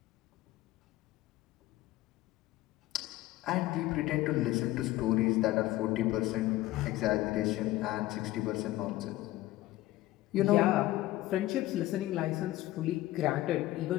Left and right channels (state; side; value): quieter; right; 16.5 dB